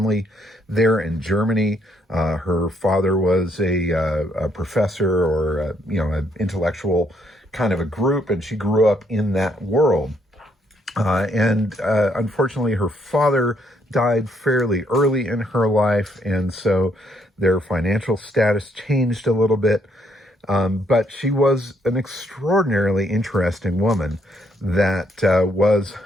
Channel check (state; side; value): normal; both; correlation 0.71